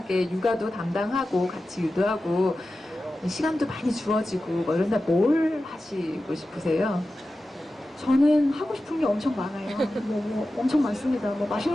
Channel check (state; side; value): normal; both; correlation 0.94